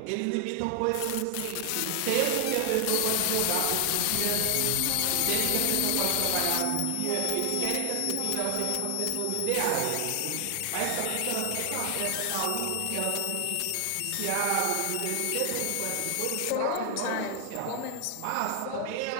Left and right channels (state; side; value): different; both; correlation 0.00